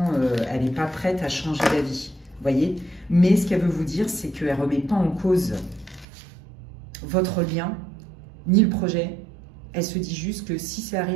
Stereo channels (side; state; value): left; drops out; at 6.1 s